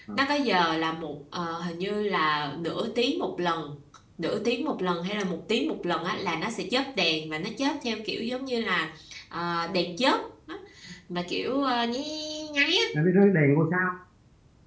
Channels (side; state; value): both; identical; correlation 1.00